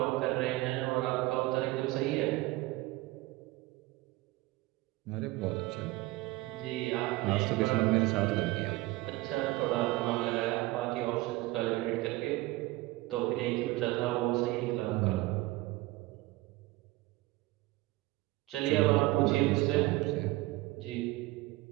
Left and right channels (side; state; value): left; quieter; 19.8 dB